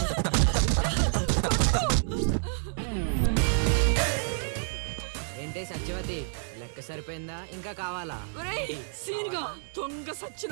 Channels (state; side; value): silent; left; 59 dB below the other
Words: ఏంటే సత్యవతి, లెక్క సరిపోయిందా? ఇంకా కావాలా? సీన్గా దొంగ